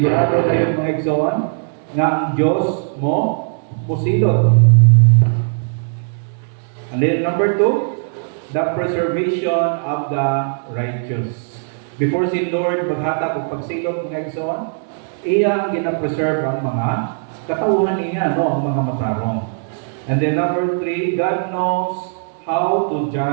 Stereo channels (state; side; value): silent; left; digital silence